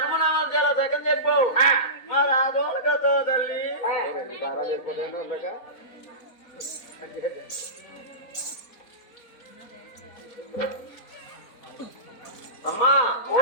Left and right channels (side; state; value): right; late; 3.9 ms